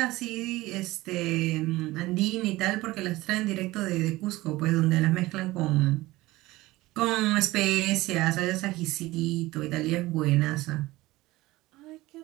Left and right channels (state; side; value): quieter; left; 18.8 dB